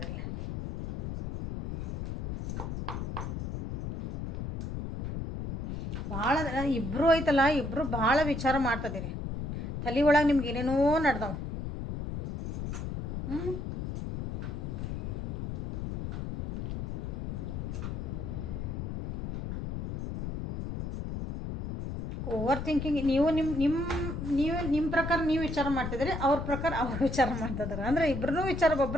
ಭಾಳ ಇಬ್ಬರು ಐತಲ್ಲ, ಇಬ್ಬರು ಭಾಳ ವಿಚಾರ ಮಾಡ್ತದಿರಿ. ತಲೆ ಒಳಗೆ ನಿಮ್ಗೆ ಏನೇನೋ ನಡ್ದಾವ. Over thinking. ನಿಮ್ಮ ಪ್ರಕಾರ ನೀವು ವಿಚಾರ ಮಾಡ್ತಿದ್ರಿ, ಅವ್ರ ಪ್ರಕಾರ ಅವ್ರು ವಿಚಾರ ಮಾಡ್ತಿದ್ದಾರೆ. ಅಂದರೆ ಇಬ್ಬರೂ ವಿಚಾರ,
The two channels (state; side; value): noise; left; rumble, 4 dB below the sound